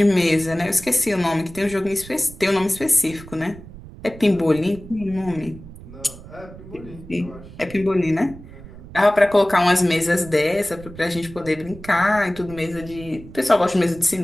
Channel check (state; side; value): noise; right; rumble, 17 dB below the sound